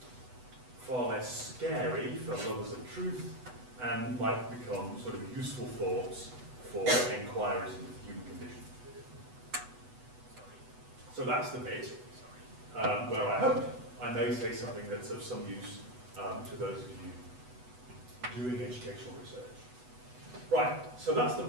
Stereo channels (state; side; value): late; left; 8.0 ms